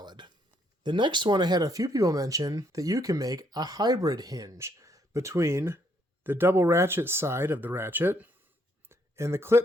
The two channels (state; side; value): normal; both; correlation 0.71